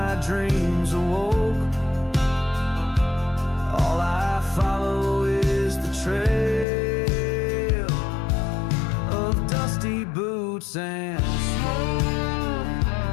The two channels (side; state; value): right; drops out; at 6.7 s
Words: dreams awoke, all I follow is the trail of dusty boots and smoke.